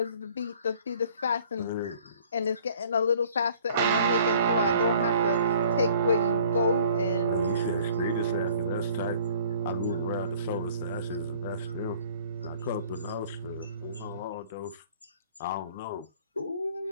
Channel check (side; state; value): both; inverted; correlation -0.54